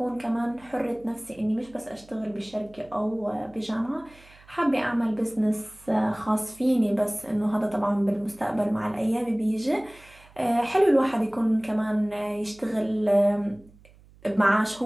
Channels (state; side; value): noise; right; hum, 26 dB below the sound